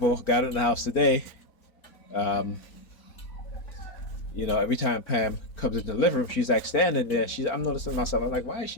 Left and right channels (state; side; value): late; right; 4.5 ms